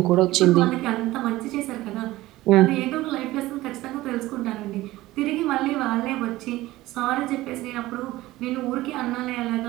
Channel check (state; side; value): quieter; left; 17.4 dB